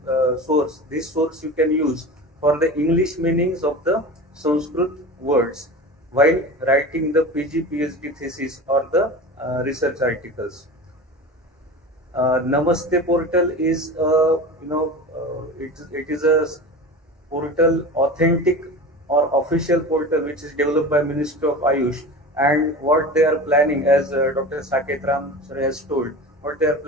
source you can use for the English meanings of the Sanskrit words while writing the PG, PhD thesis or the research articles. Namaste portal is it is a portal authentic or official portal which is developed by Ministry of Ayush, and what they are planning, as Dr. Saketh Ram sir has told, what they are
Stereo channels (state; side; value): normal; both; correlation 0.32